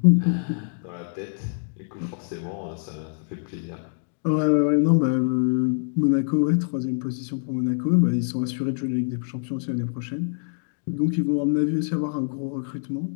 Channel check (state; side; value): silent; right; digital silence